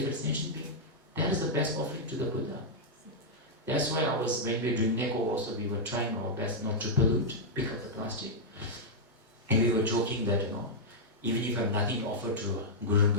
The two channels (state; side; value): normal; both; correlation -0.06